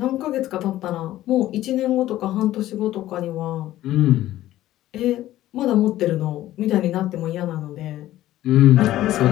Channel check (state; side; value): quieter; right; 14.4 dB